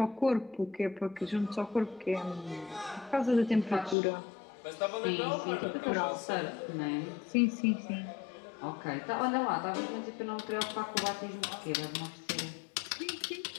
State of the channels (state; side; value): drops out; right; at 4.0 s